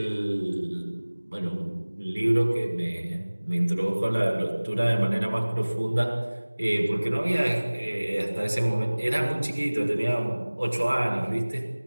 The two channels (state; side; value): inverted; both; correlation -1.00